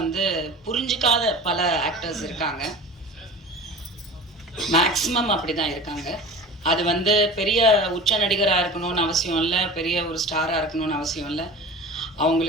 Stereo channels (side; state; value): both; normal; correlation 0.36